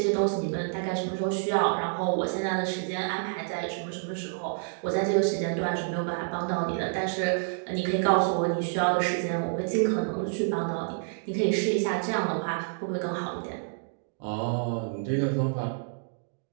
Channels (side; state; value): left; silent; digital silence